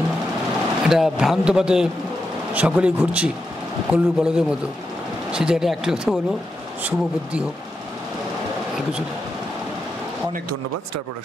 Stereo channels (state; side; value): normal; both; correlation 0.86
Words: ভ্রান্ত পথে সকলেই ঘুরছি কল্লুর বলদের মতো। সে জায়গাটা একটি কথা বলবো, শুভ বুদ্ধি হোক, আর কিছু। অনেক ধন্যবাদ স্টার